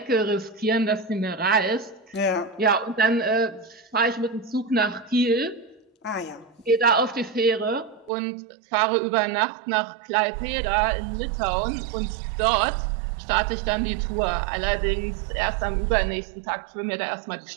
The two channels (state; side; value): drops out; left; at 8.1 s